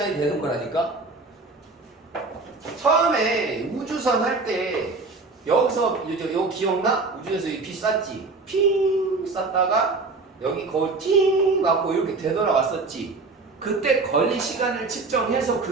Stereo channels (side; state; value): left; quieter; 3.7 dB